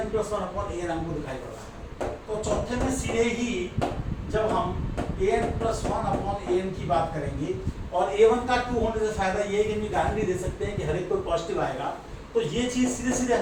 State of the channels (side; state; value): both; identical; correlation 1.00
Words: प्लस 1 अपॉन an हमको दिखाई पड़ रहा है। तो चौथे में सीधे ही जब हम an प्लस 1 अपॉन an की बात करेंगे, और a1 का 2 होने से फायदा ये है कि हम गारंटी दे सकते हैं कि हर एक कोई पॉजिटिव आएगा, तो ये चीज़ सीधे सीधे